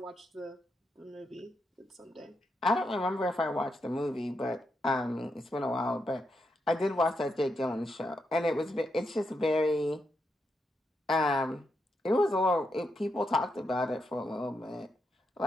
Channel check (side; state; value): both; normal; correlation 0.83